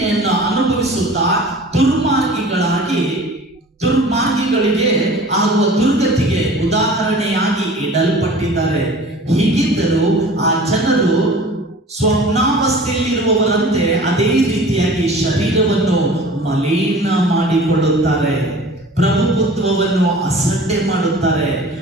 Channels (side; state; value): both; normal; correlation 0.43